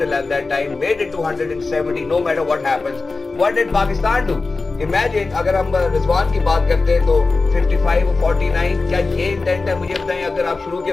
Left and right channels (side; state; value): right; quieter; 3.8 dB